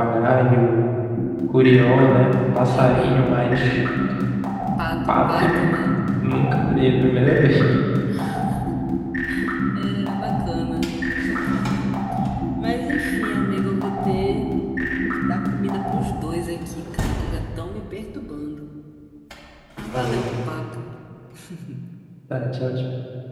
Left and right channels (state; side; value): identical; both; correlation 1.00